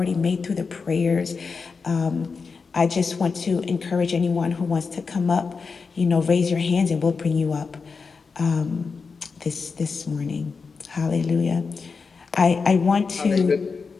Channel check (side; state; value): right; quieter; 4.9 dB